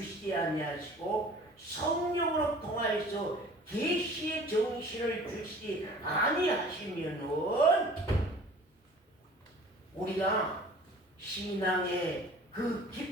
아니하시고, 성령으로 통하여서 계시의 정신을 주시지 아니하시면은 우리가 신앙의 그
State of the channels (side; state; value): both; normal; correlation 0.47